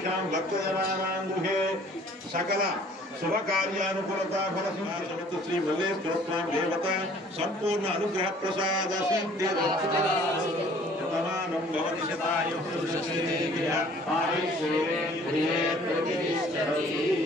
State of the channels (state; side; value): normal; both; correlation 0.54